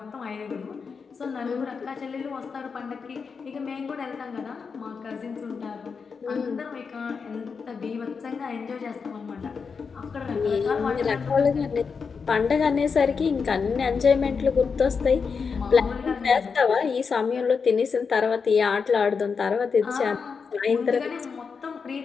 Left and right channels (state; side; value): quieter; right; 5.5 dB